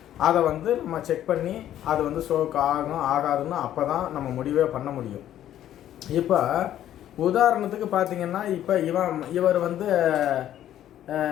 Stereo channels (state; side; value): quieter; right; 11.7 dB